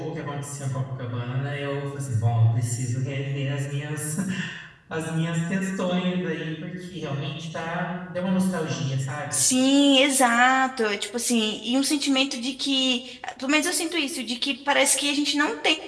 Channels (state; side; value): identical; both; correlation 1.00